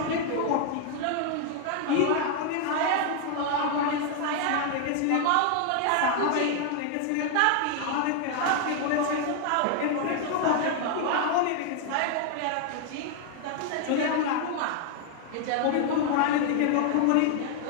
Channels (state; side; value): different; both; correlation 0.00